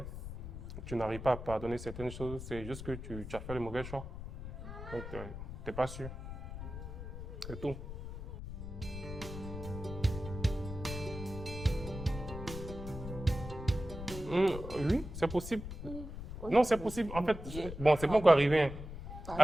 tu n'arrives pas à pardonner certaines choses, c'est juste que tu as fait le mauvais choix. Donc, tu n'es pas sûr. C'est tout. Oui, c'est possible. Non, c'est possible. En fait, bon, c'est pas encore arrivé. Hein.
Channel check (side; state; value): left; noise; rumble, 9 dB below the sound